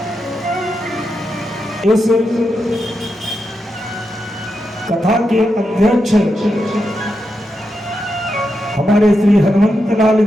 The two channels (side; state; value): both; normal; correlation 0.86